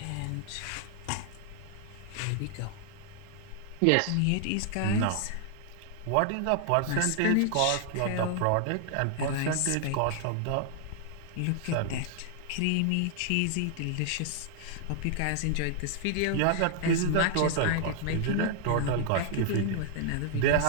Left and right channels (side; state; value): both; different; correlation 0.00